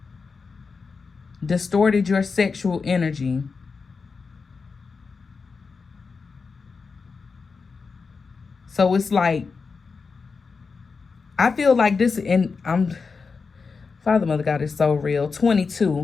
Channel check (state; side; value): quieter; right; 4.8 dB